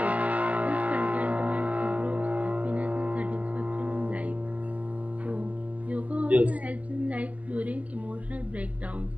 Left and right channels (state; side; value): late; left; 0.073 ms